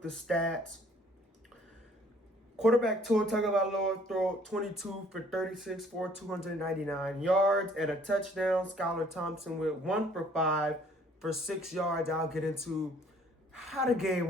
the stats. Quarterback Tua Tagovailoa threw 22 for 36 for 299 yards and a touchdown. Skylar Thompson with 1 for 5 for 6 yards. I'll get into how the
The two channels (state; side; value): normal; both; correlation 0.59